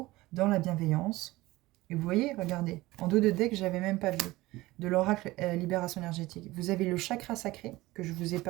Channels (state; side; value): quieter; left; 19.0 dB